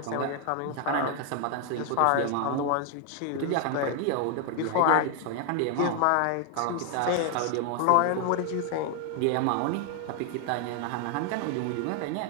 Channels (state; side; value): different; both; correlation 0.00